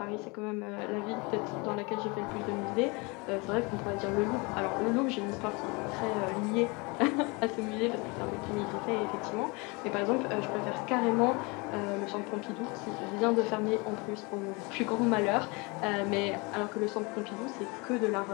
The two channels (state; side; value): quieter; right; 28.0 dB